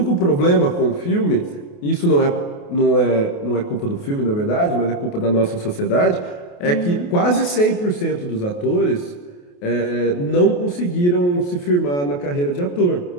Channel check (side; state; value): right; late; 28 ms